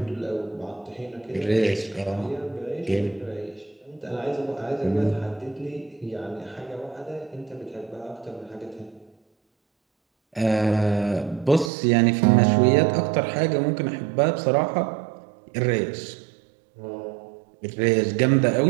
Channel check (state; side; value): drops out; left; at 11.7 s